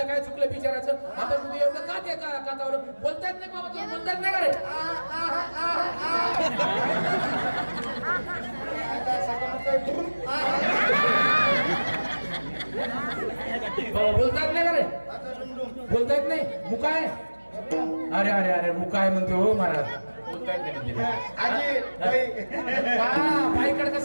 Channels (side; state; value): both; inverted; correlation -1.00